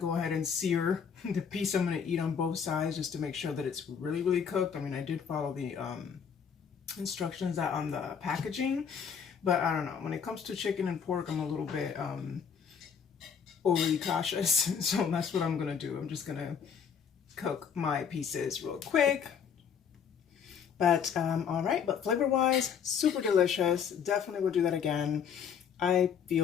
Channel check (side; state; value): right; quieter; 7.2 dB